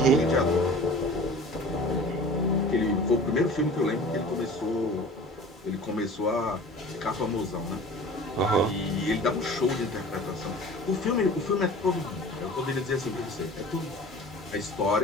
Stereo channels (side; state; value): both; normal; correlation 0.41